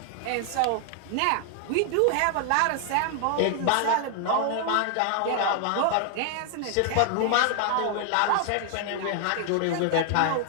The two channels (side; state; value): both; different; correlation 0.00